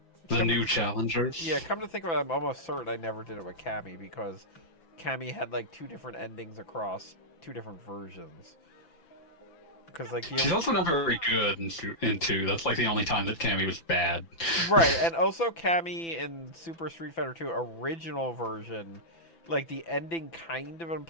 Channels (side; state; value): right; late; 5.9 ms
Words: The new challengers. Yeah, come to think of it, I'm almost certain I never did it with Cammy because Cammy had like 2 different endings across 2 different versions. Because like She's also not very good in 2. That's like the only time that Cammy was bad. Right, and also Cammy in Super Street Fighter 2 original version, like the ending kind of